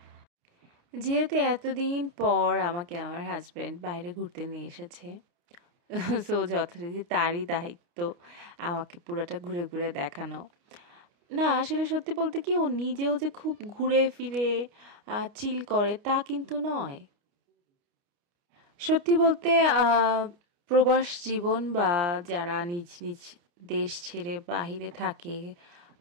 যেহেতু এতদিন পর আমাকে আমার হাজব্যান্ড বাইরে ঘুরতে নিয়ে এসেছে, সো যথারীতি তারই দায়িত্ব আমাকে পুরোটা ঘুরে ঘুরে দেখানো। না আসলে সত্যি বলতে কি, ও নিজেও যে খুব ঘুরে ফিরে চিল করে তা কিন্তু নয়। সত্যি বলতে প্রবাস জীবন বা যারা নিজ নিজ দেশ ছেড়ে বাহিরে থাকে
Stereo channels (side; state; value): left; late; 29 ms